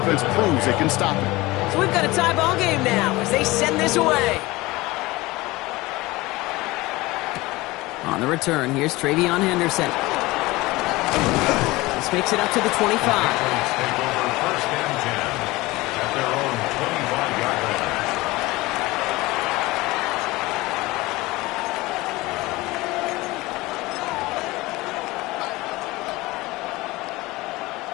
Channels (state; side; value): quieter; right; 20.7 dB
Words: proves they can stop it. So we've got a tie ball game now as they send this away. On the return, here's Travion Henderson. This makes it up to the 25.